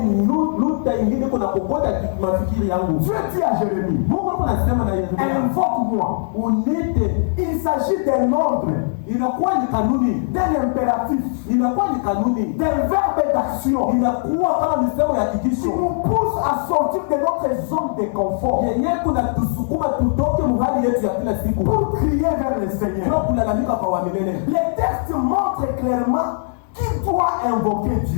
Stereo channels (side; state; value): right; silent; digital silence